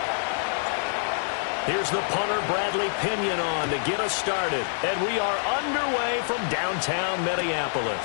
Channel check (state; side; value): silent; right; digital silence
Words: Here's the punter, Bradley Pinion, on to get us started. And we are underway from downtown